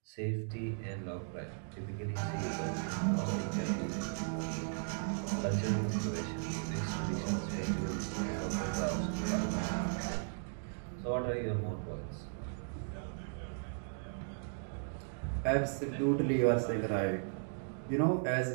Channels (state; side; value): silent; left; digital silence